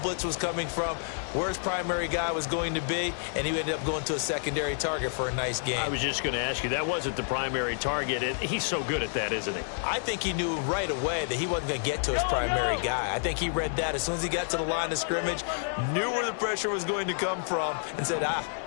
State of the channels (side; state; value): right; silent; digital silence